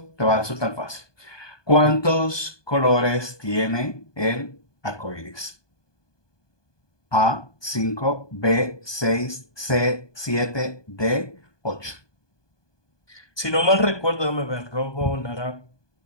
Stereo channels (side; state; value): right; late; 1.2 ms